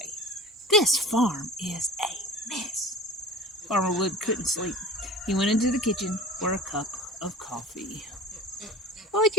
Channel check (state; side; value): normal; both; correlation 0.38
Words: This farm is a mess. Farmer Wood couldn't sleep. He went into the kitchen for a cup of coffee. What'd